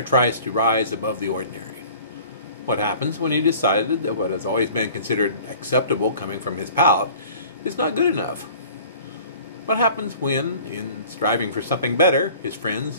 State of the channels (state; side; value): inverted; both; correlation -0.47